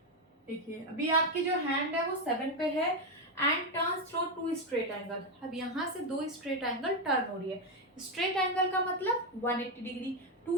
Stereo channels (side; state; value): both; normal; correlation 0.06